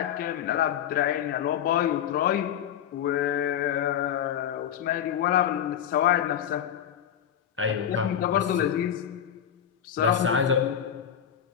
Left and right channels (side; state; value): right; quieter; 9.5 dB